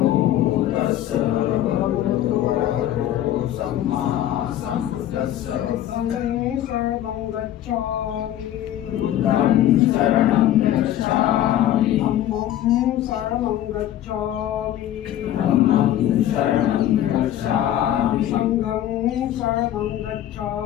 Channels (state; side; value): quieter; right; 12.3 dB